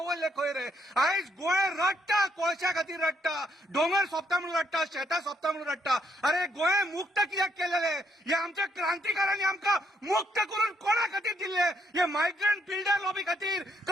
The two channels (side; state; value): both; normal; correlation 0.73